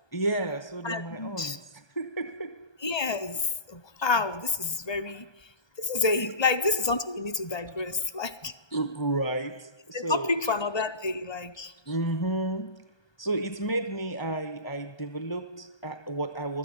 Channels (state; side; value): late; right; 1.2 ms